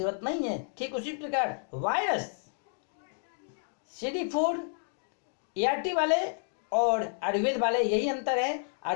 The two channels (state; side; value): silent; right; 57 dB below the other